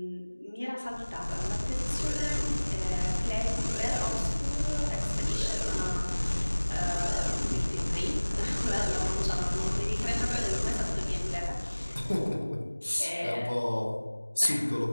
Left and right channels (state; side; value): inverted; both; correlation -1.00